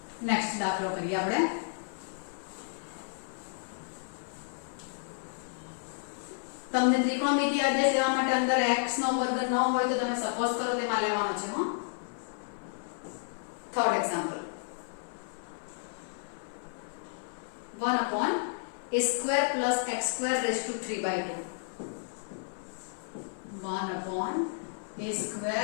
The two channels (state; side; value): silent; right; 57 dB below the other